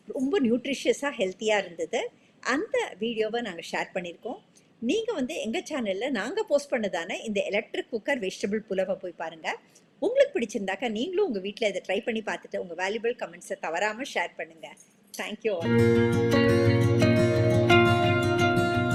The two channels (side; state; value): both; identical; correlation 1.00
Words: ரொம்ப நியூட்ரிஷியஸாக ஹெல்த்தியாக இருந்தது. அந்த வீடியோவை நாங்கள் ஷேர் பண்ணியிருக்கோம். நீங்கள் வந்து எங்கள் சேனலில் நாங்கள் போஸ்ட் பண்ணதான இந்த எலக்ட்ரிக் குக்கர் வெஜிடபிள் புலவை போய் பாருங்கள். உங்களுக்கு பிடிச்சிருந்தாக்கா நீங்களும் உங்கள் வீட்டில் இதை ட்ரை பண்ணி பார்த்துட்டு உங்கள் வேல்யூபிள் கமெண்ட்ஸை தவறாமல் ஷேர் பண்ணுங்கள். Thank you all.